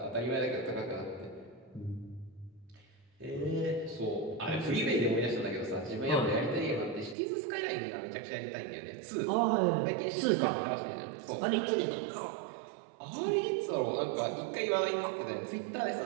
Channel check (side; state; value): left; drops out; at 7.2 s